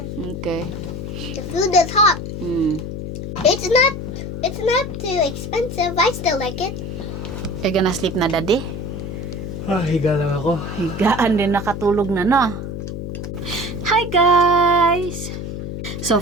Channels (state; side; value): noise; left; hum, 6 dB below the sound